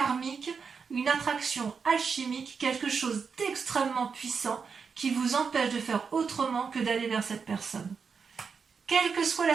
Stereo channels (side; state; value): left; quieter; 5.7 dB